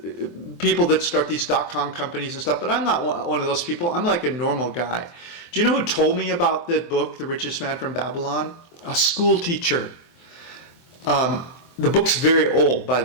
People that start these .com companies and stuff, but I'm not one of those people. I'm like a normal guy. Do you know who told me about that book, The Richest Man from Babylon? A school teacher. The book's very old, by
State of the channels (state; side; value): late; right; 24 ms